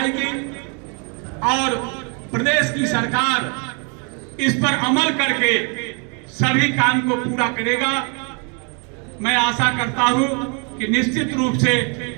और प्रदेश की सरकार इस पर अमल करके सभी काम को पूरा करेगा। मैं आशा करता हूं कि निश्चित रूप से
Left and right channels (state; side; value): quieter; left; 36.7 dB